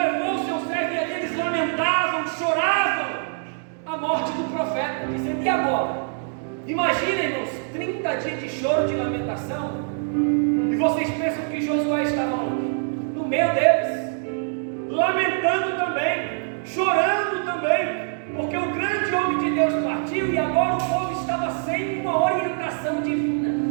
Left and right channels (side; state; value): left; silent; digital silence